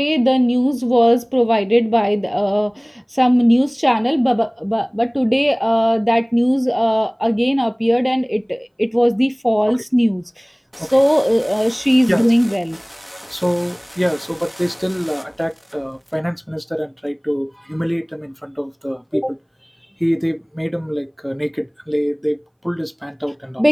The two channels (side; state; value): both; identical; correlation 1.00